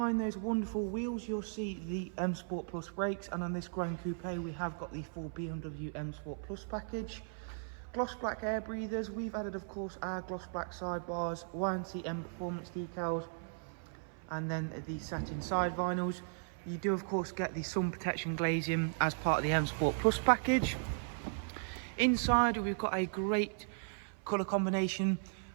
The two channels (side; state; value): left; silent; 53 dB below the other